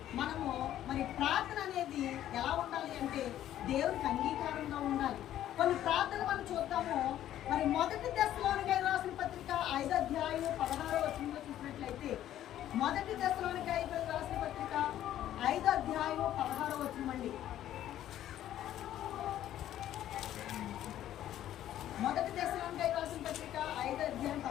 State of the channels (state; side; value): quieter; right; 12.2 dB